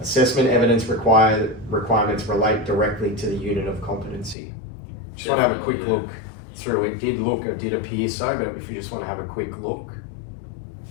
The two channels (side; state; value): right; drops out; at 4.4 s